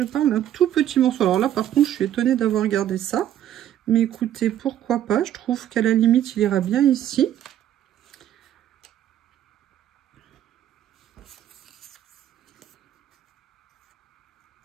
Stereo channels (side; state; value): left; quieter; 11.3 dB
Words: parle d'un tout petit morceau. Alors là, par contre, je suis étonnée d'avoir gardé ça. Mais écoutez, pourquoi pas? Je trouve qu'à la limite, il ira bien ici.